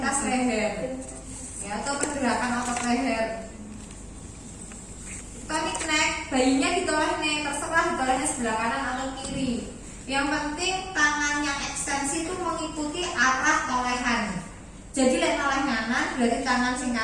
leher, ya, atau pergerakan otot leher. Tonic neck, bayinya ditoleh nih, terserah ditolehnya sebelah kanan atau kiri. Yang penting tangan yang ekstensi itu mengikuti arah tolehan. Jadi lek noleh kanan berarti tangan sing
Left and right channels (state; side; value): identical; both; correlation 1.00